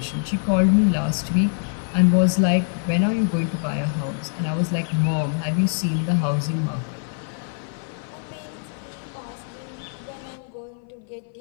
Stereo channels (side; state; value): right; silent; 59 dB below the other